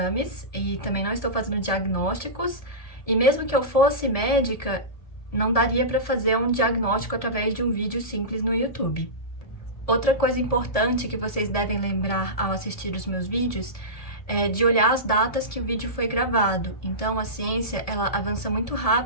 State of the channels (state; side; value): late; right; 1.7 ms